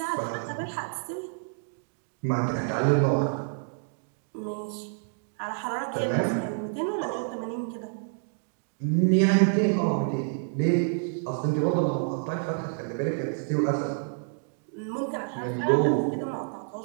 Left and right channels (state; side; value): silent; left; digital silence